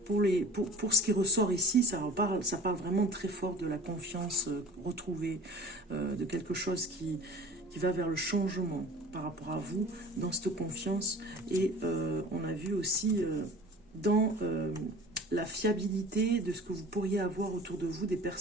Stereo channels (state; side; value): normal; both; correlation 0.42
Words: Pour ce qui ressort ici, ça parle vraiment très fort de la confiance retrouvée, de quelque chose qui va vers le changement par rapport à vous, dans cette confiance. Et on a vu aussi dans la fiabilité de ce que vous pourriez avoir autour de vous, des